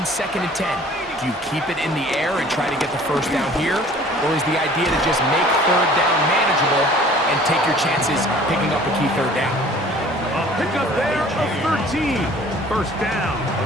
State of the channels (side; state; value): both; normal; correlation 0.50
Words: 2nd and 10. Do you keep it in the air and try to get the first down here? Or is the idea to just make 3rd down manageable and take your chances picking up a key 3rd down? A pickup there of 13. First down,